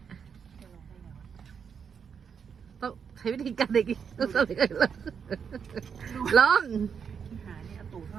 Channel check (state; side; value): quieter; left; 6.8 dB